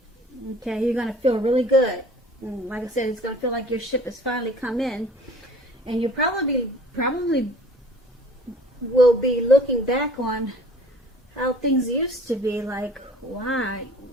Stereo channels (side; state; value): both; normal; correlation 0.50